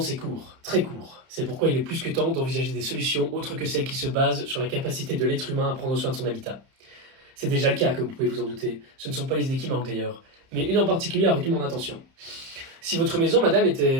c'est court, très court. C'est pourquoi il est plus que temps d'envisager des solutions autres que celles qui se basent sur la capacité de l'être humain à prendre soin de son habitat. C'est déjà le cas, comme vous pouvez vous en douter. Ce ne sont pas les idées qui manquent d'ailleurs, mais une en particulier a retenu mon attention. Si votre maison, madame,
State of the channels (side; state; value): left; late; 30 ms